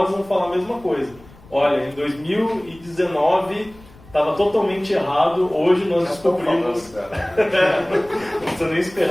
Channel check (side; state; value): left; noise; rumble, 23 dB below the sound